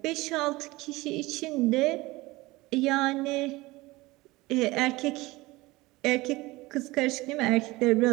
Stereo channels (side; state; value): left; quieter; 20.7 dB